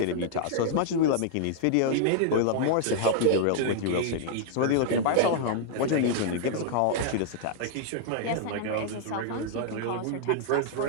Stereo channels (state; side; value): different; both; correlation -0.01